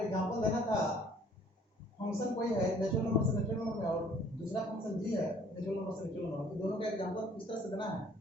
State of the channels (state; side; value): normal; both; correlation 0.57